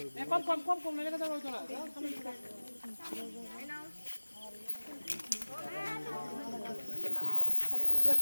কম লেগে দাও ওইটা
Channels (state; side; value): inverted; both; correlation -1.00